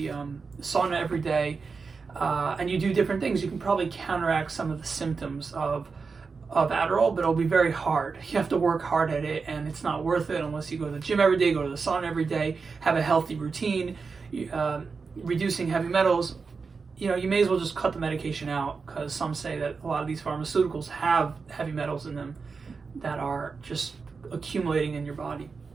sauna every day, and you do different things, you can probably counteract some of the symptoms of Adderall, but it'll be very hard. You have to work hard at it, and it's not worth it unless you go to the gym every day, go to the sauna every day, have a healthy routine, reducing heavy metals. You may as well just cut the medication out, because some say that a lot of these pharmaceuticals have heavy metals in them that are just accumulating in your body.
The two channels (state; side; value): quieter; left; 4.9 dB